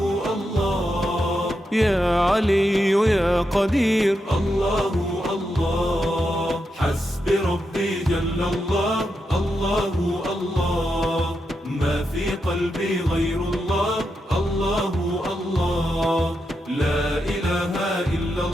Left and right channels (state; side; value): normal; both; correlation 0.85